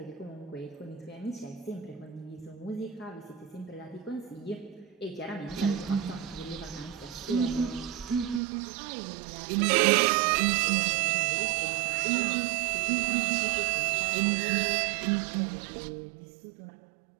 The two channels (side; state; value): left; drops out; at 8.4 s